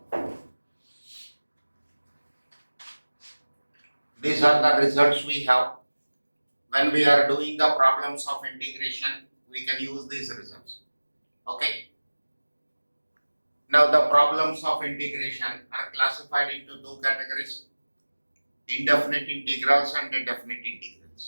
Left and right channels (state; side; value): inverted; both; correlation -1.00